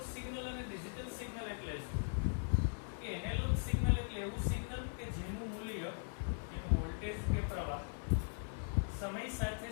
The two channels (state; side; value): silent; right; 51 dB below the other